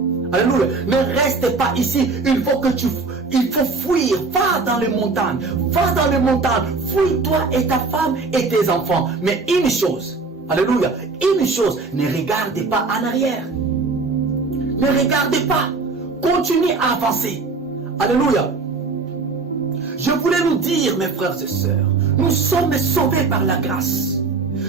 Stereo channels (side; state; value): left; quieter; 4.1 dB